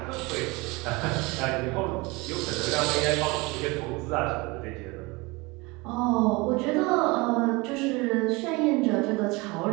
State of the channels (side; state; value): left; quieter; 24.8 dB